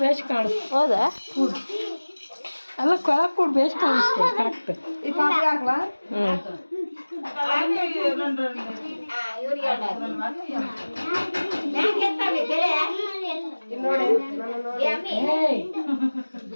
ಬೇಸ್ ಕಾಣಿಸ್ತು. ಹೌದಾ? ಅಲ್ಲ ಕೊಳಕ್ ಕೂಡ್ ಬೇಸ್ ಕಾಣಿಸ್ತು. ಕರೆಕ್ಟ್.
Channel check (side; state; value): both; inverted; correlation -1.00